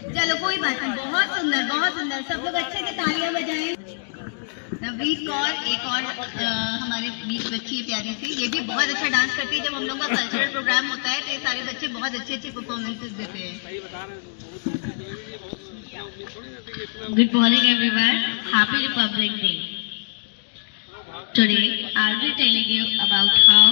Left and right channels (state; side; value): silent; right; digital silence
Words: कोई बात नहीं, बहुत सुंदर बहुत सुंदर, सब लोग अच्छे से तालियां बजाएं। नवनीत कौर एक और हमारे बीच बच्ची है प्यारी सी, ये भी बहुत अच्छा डांस करती है। जब हम लोग का कल्चरल प्रोग्राम होता है तो ये सारे बच्चे बहुत अच्छी अच्छी परफॉर्मेंसेस देते हैं। Good morning everyone, Happy Republic Day. Today I'll be telling you about how